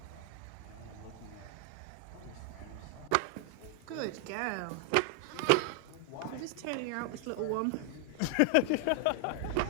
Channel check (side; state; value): both; different; correlation 0.00